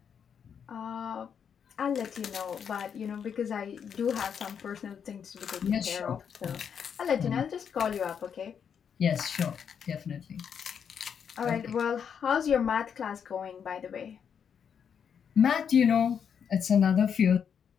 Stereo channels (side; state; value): right; quieter; 7.5 dB